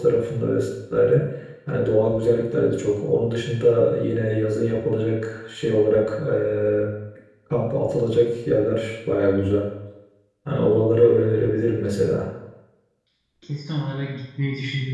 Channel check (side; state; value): both; identical; correlation 1.00